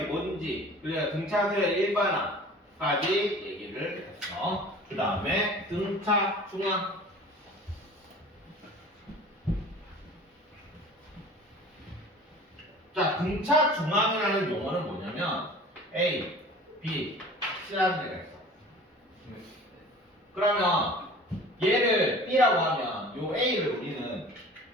뭔지, 그래야 등차 서열 일반화까지 얘기를 했어. 그 다음에 등차 중앙. 자, 등차 중앙이라는 용어는 뭐냐면 A, B, C라는 데가 있어. 그러면 얘를 B라고 하면 요 A를 우리는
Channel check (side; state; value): both; normal; correlation 0.44